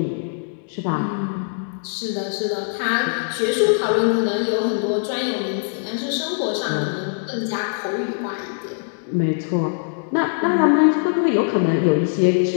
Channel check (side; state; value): right; silent; digital silence